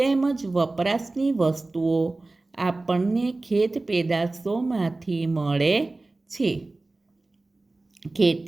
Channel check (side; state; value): left; quieter; 3.1 dB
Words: વપરાશની વસ્તુઓ આપણને ખેત પેદાશોમાંથી મળે છે.